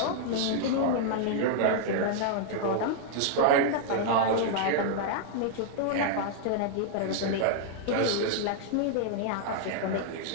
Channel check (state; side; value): different; both; correlation -0.01